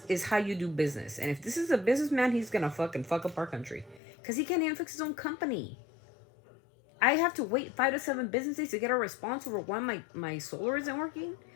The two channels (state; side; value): drops out; right; at 4.0 s